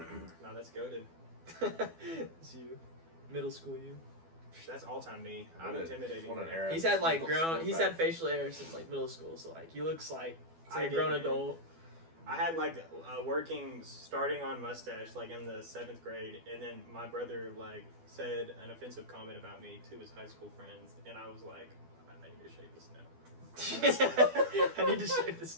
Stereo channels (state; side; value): late; left; 12 ms